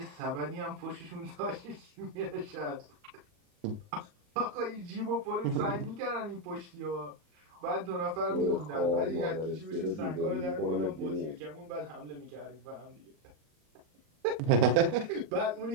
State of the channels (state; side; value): late; left; 38 ms